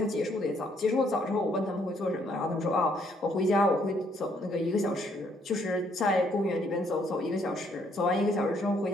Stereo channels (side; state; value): both; normal; correlation 0.68